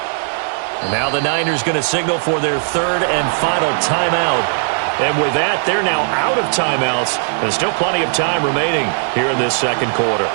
Now the Niners going to signal for their 3rd and final timeout. And with that, they're now out of timeouts. There's still plenty of time remaining here in this second quarter.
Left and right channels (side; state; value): left; silent; digital silence